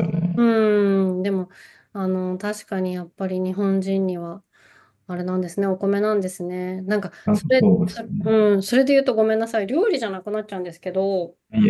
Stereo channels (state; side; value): identical; both; correlation 1.00